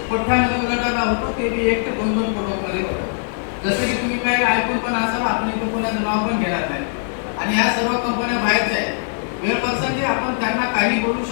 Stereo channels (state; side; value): silent; right; digital silence